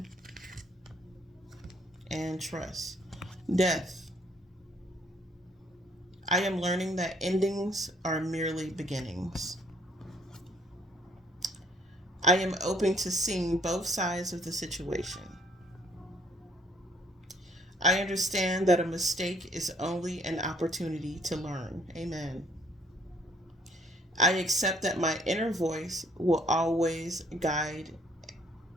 and trust. Death. I am learning that endings are merely beginnings. I am open to seeing both sides of the situation. I understand that a mistake is only an opportunity to learn. Amen. I accept that my inner voice will always guide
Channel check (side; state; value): both; normal; correlation 0.62